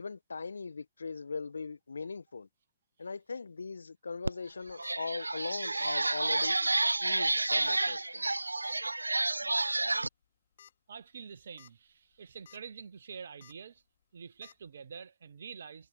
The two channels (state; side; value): inverted; both; correlation -0.97